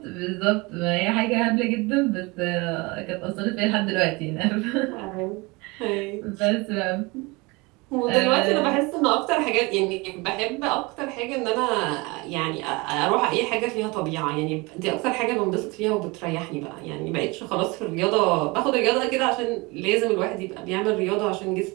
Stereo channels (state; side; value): quieter; left; 25.5 dB